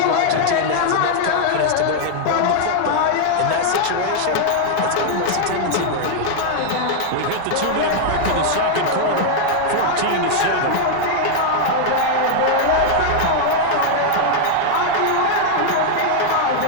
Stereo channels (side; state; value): both; different; correlation -0.01